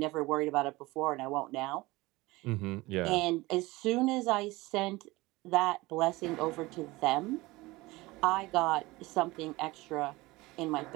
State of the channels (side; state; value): left; quieter; 20.9 dB